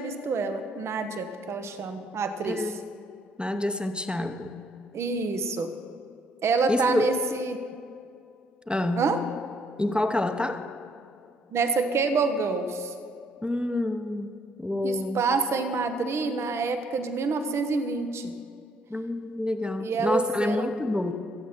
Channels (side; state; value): both; normal; correlation 0.68